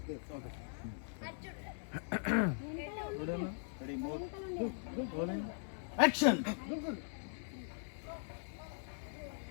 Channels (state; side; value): silent; right; 51 dB below the other